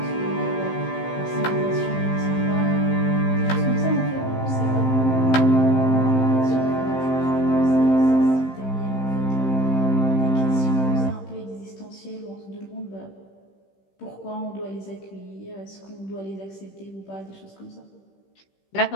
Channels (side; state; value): right; late; 15 ms